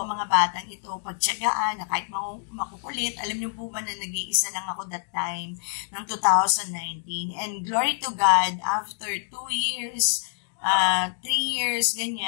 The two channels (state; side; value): silent; right; digital silence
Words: ang mga batang ito, pagtiyagaan, na kahit makukulit. Alam niyo po ba na nag-iisa lang ako that time, ng 2019. And glory to God, after 2 years, 3 years,